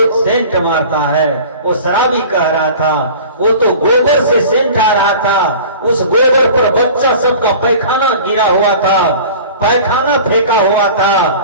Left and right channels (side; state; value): both; inverted; correlation -0.41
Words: सेंट मारता है। वो शराबी कह रहा था, वो तो गोबर से सेंट आ रहा था। उस गोबर पर बच्चा सबका पैखाना गिरा हुआ था, पैखाना फेंका हुआ था,